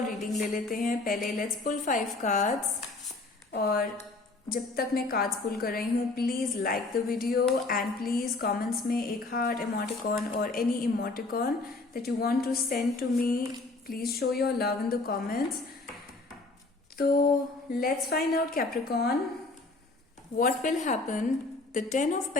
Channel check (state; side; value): quieter; right; 3.3 dB